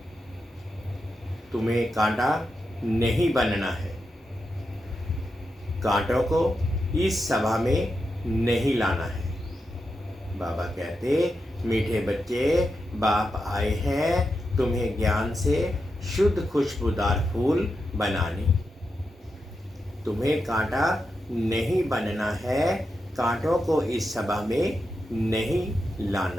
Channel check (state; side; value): normal; both; correlation 0.87